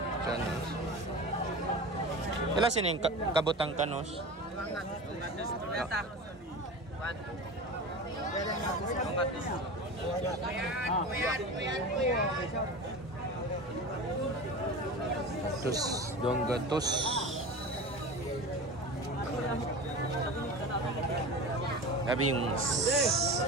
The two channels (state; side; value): normal; both; correlation 0.31